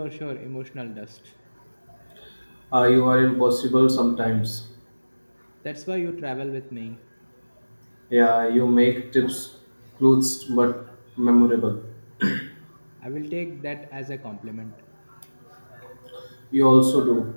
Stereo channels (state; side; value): inverted; both; correlation -1.00